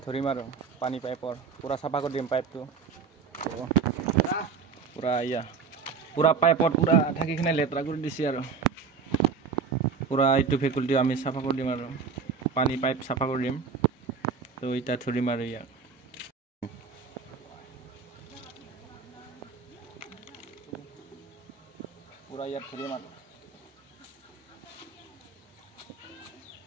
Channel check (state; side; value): quieter; left; 5.5 dB